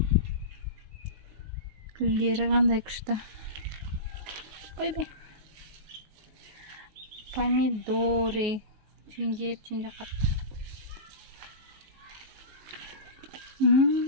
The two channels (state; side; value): late; left; 19 ms